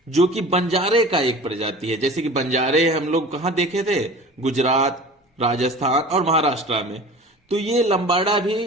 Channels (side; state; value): both; normal; correlation 0.40